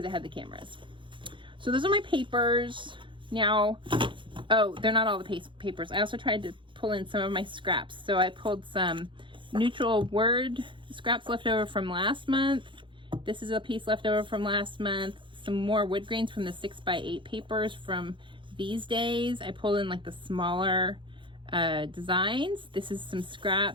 it had the cameras. So those are my papers. Now, Oh, they're not all the papers. I also tried to pull in some of my scraps. So I pulled some neutral word scraps left over from last month. This is a piece left over from last month. Some more wood grains from the 6x8 papers from these days. I pulled in like the smaller designs. This is some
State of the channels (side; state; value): left; late; 0.24 ms